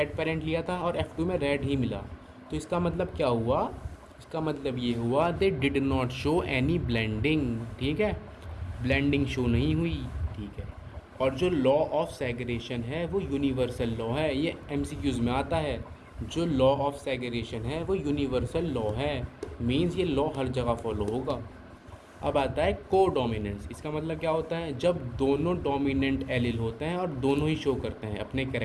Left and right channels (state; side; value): identical; both; correlation 1.00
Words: पेरेंट लिया था और F2 में रेड ही मिला। तो इसका मतलब क्या हुआ, इसका मतलब ये हुआ दे did not show any blending. ठीक है, ब्लेंडिंग शो नहीं हुई। ठीक है। और जो लॉ ऑफ सेग्रेगेशन है वो यूनिवर्सल लॉ है, ये MCQs में आता है। जो लॉ ऑफ सेग्रेगेशन है वो यूनिवर्सल लॉ है, मींस ये लॉ हर जगह फॉलो होगा। अब आता है को डोमिनेंस। इसका मतलब क्या होता है, जब दोनों डोमिनेंट एलिल होते हैं और दोनों ही शो करते हैं अपने